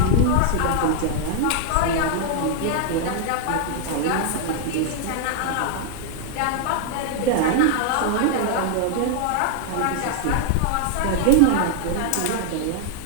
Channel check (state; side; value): different; both; correlation 0.00